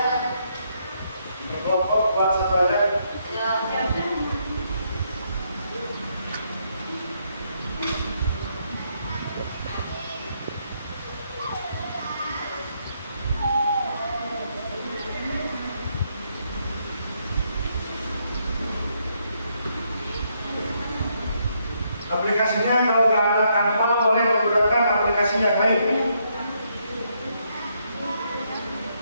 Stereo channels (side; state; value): both; inverted; correlation -0.75